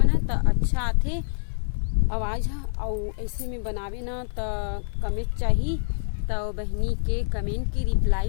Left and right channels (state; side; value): silent; right; digital silence